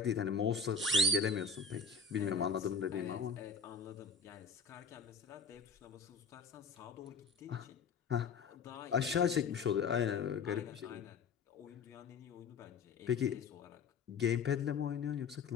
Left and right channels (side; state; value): right; quieter; 4.9 dB